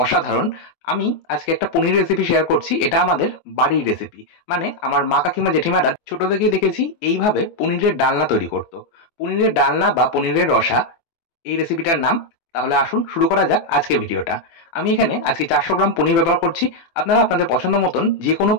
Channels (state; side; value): late; right; 24 ms